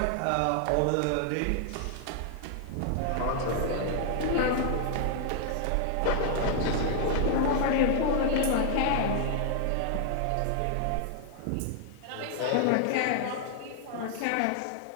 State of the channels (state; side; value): different; both; correlation 0.00